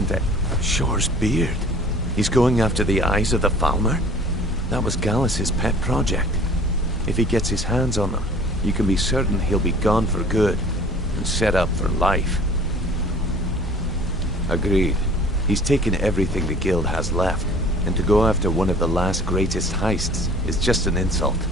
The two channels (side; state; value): both; normal; correlation 0.48